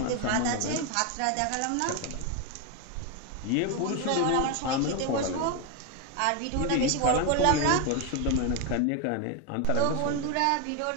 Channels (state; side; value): different; both; correlation 0.01